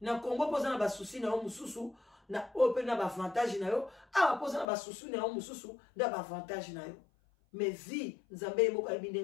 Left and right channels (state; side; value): drops out; right; at 4.7 s